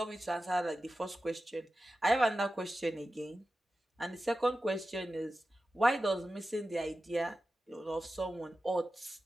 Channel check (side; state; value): both; normal; correlation 0.94